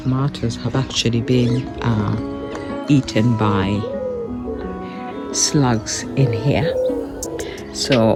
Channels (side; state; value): both; identical; correlation 1.00